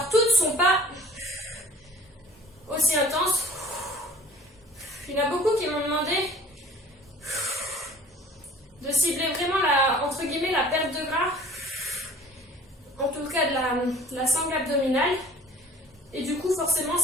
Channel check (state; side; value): normal; both; correlation 0.48